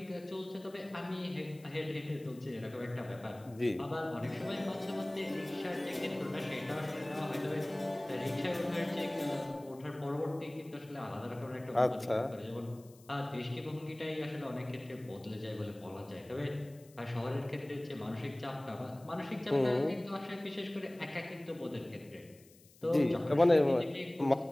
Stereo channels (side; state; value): left; noise; hiss, 26 dB below the sound